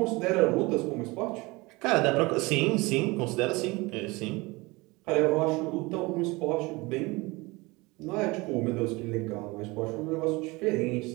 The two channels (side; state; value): left; quieter; 23.7 dB